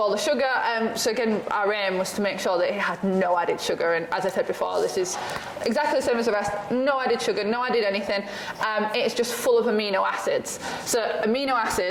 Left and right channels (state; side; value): identical; both; correlation 1.00